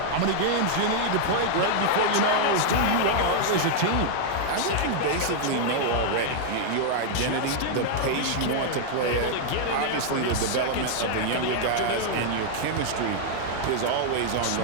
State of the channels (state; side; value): different; both; correlation -0.01